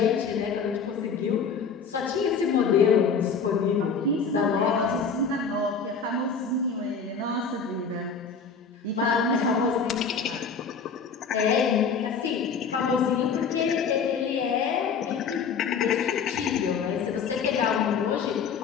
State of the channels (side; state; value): right; quieter; 5.7 dB